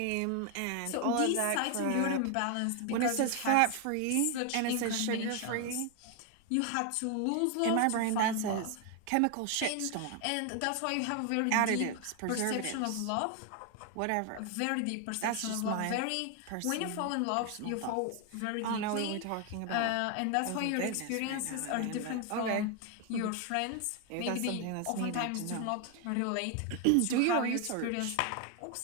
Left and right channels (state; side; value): different; both; correlation 0.01